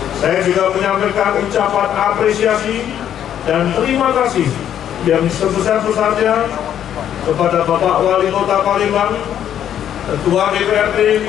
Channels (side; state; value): right; quieter; 10.1 dB